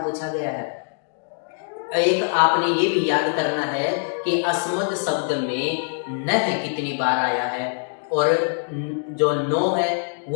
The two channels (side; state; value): right; silent; digital silence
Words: पूछा गया है। एक आपने ये भी याद करना है कि अस्मद शब्द में न है कितनी बार आया है और जो नो है